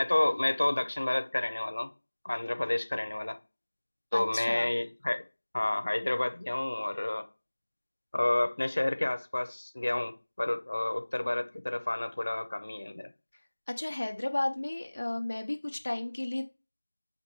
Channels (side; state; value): both; inverted; correlation -1.00